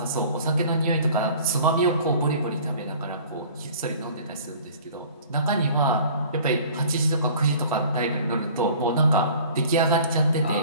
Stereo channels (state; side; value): inverted; both; correlation -0.47